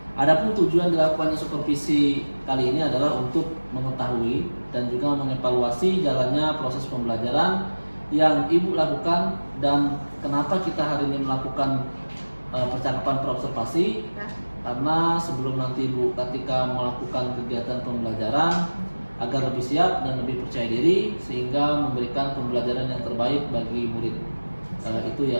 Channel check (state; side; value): inverted; both; correlation -1.00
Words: Adapun tujuan dilakukannya supervisi kali ini adalah untuk mengetahui dan juga mengevaluasi jalannya proses pembelajaran yang Ibu lakukan dan kenapa kita hari ini melakukan percakapan praobservasi. Karena sebelum nanti Ibu ketika melakukan kegiatan pembelajaran agar lebih siap dan lebih percaya diri sehingga memberikan pembelajaran yang terbaik bagi murid. Itu